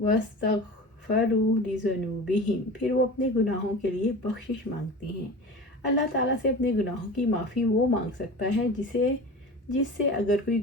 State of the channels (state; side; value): normal; both; correlation 0.34